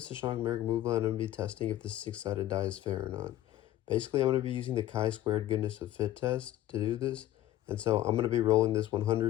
Sashank Merrick-Muvla, and I'm going to be testing if this six-sided die is fair or not. Basically, I'm going to be using the chi-squared goodness of fit test to do this, and so I'm going to be rolling this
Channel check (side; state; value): right; quieter; 13.9 dB